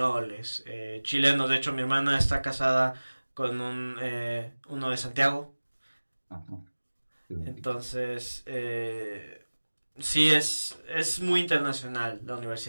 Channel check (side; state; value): both; inverted; correlation -1.00